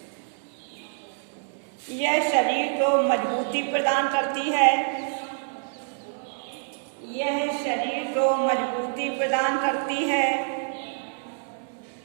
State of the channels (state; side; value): silent; left; digital silence